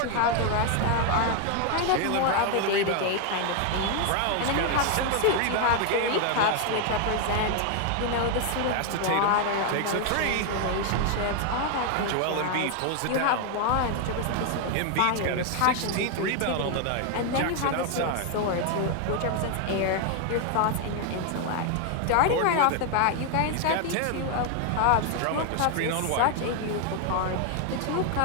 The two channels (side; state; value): both; different; correlation 0.00